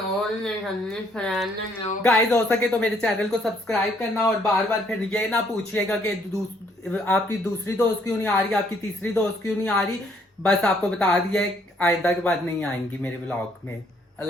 गाइस हो सके तो मेरे चैनल को सब्सक्राइब करना और बार बार फिर ये ना पूछिएगा कि आपकी दूसरी दोस्त क्यों नहीं आ रही, आपकी तीसरी दोस्त क्यों नहीं आ रही। बस आपको बता दिया है, आइंदा के बाद नहीं आएंगी मेरे व्लॉग में।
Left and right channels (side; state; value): both; normal; correlation 0.67